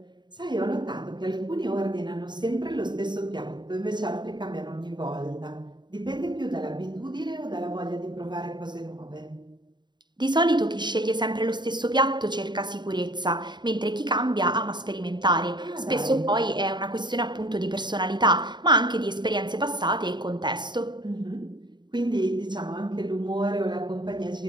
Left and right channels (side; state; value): left; late; 0.22 ms